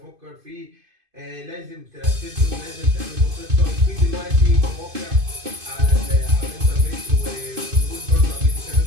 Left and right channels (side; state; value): left; late; 2.5 ms